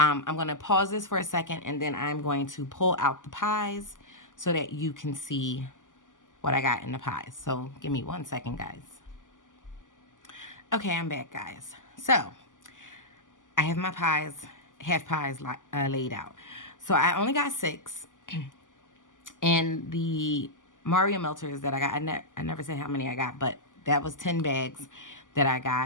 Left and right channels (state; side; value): late; right; 0.87 ms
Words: going to pause this for a second, and then I'm going to pull out the pies so that you can see what I got in the pies. So give me 1 second, guys. Okay, I'm back, guys. So I have my pies, half pies laid out. So I only got 6. And the Mario melters that I got, I never said how many I got, but that was 10 bags that I